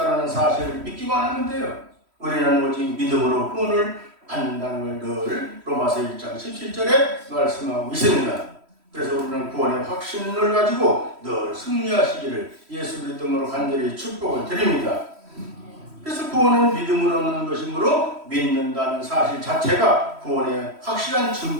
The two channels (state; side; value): late; left; 3.1 ms